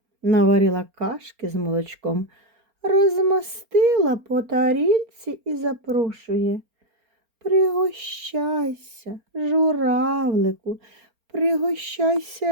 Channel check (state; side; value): late; left; 4.4 ms